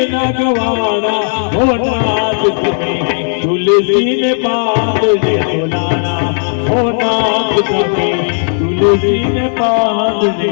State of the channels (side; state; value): right; silent; digital silence